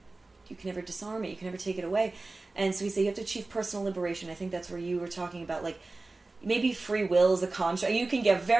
disarm it. You can never take it away. And so we say you have to achieve personal liberation. I think that's where you were talking about, like, maybe free will is a construct. You can get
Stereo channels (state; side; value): quieter; left; 3.3 dB